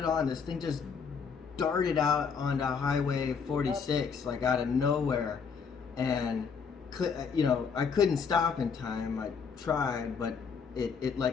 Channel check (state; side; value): quieter; right; 6.0 dB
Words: on. This thing just darted out onto Highway 46, like out of nowhere, and I couldn't stop in time. I tried, but it